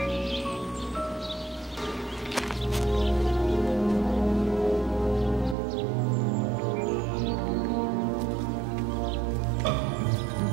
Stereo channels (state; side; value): drops out; left; at 5.6 s